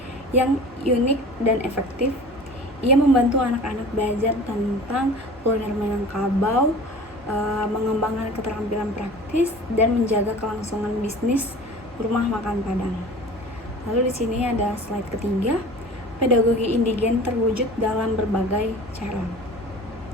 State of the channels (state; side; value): normal; both; correlation 0.40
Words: yang unik dan efektif. Ia membantu anak-anak belajar tentang kuliner Minangkabau, mengembangkan keterampilan praktis, dan menjaga kelangsungan bisnis rumah makan Padang. Lalu di sini ada slide ketiga, pedagogi indigen terwujud dalam berbagai cara.